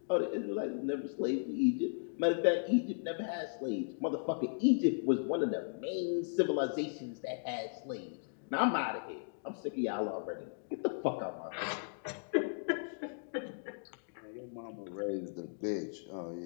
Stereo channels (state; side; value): silent; right; digital silence